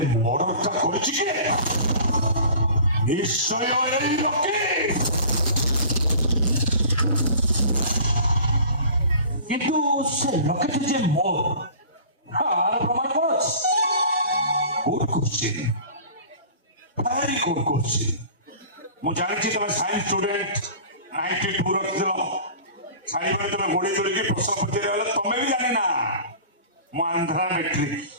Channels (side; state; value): both; inverted; correlation -0.42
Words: ମର୍ଡରଟା କରିଛି କିଏ ନିଶ୍ଚୟ ଏଇ ଲକେଟ କିନ୍ତୁ ସେ ଲକେଟ ଯେ ମୋର ଆର ପ୍ରମାଣ କ'ଣ ଅଛି good question very good question ମୁଁ ଜାଣିଛି ତମେ ସାଇନ୍ସ ଷ୍ଟୁଡେଣ୍ଟ 92 ରଖିଥିଲ ସାଇବେଳେ ତମେ ଗୋଡ଼ି ଯୋଡ଼ିକି ପ୍ରଶ୍ନ ପଚାରିବା ବେଳେ ତମେ ବି ଜାଣିନା ମୁଁ ଆନ୍ଧ୍ରା ମେଟ୍ରିକ